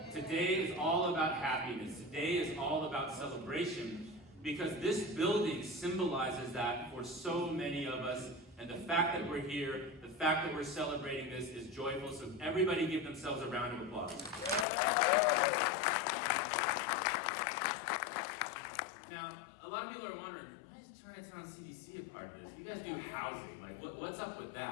Today is all about happiness. Today is all about celebration because this building symbolizes that for so many of us. And the fact that we're here, the fact that we're celebrating this is joyful. So everybody give themselves a round of applause. Now, a lot of people are wondering, why is Chinatown CDC a part of this? You guys do housing. Like, what's up with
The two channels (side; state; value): right; drops out; at 14.7 s